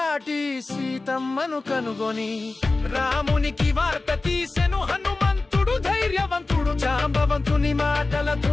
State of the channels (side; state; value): right; quieter; 3.4 dB